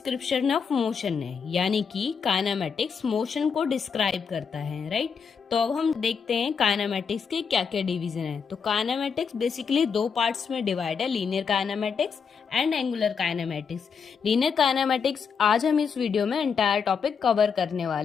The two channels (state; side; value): quieter; right; 6.2 dB